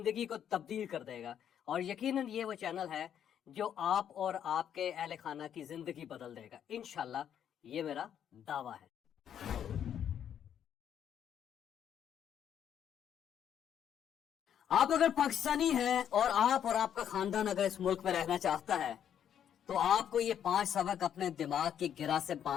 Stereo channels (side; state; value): right; quieter; 9.3 dB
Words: को तब्दील कर देगा और यकीनन ये वो चैनल है जो आप और आपके अहले खाना की जिंदगी बदल देगा इंशाल्लाह, ये मेरा दावा है। आप अगर पाकिस्तानी हैं और आप और आपका खानदान अगर इस मुल्क में रहना चाहता है तो आपको ये 5 सबक अपने दिमाग की गिरा से